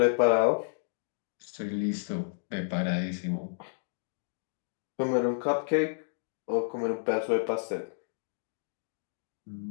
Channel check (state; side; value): silent; right; digital silence